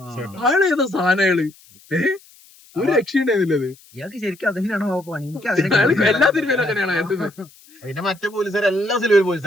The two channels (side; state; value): left; noise; hiss, 26 dB below the sound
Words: ഏതാ സാധനങ്ങള് ഒരു രക്ഷയുണ്ടായിരുന്നില്ലത്. എല്ലാ സിനിമയിലും അങ്ങനെയാണ്. പിന്നെ മറ്റേ പോലീസുകാർ എല്ലാ സിനിമയിലും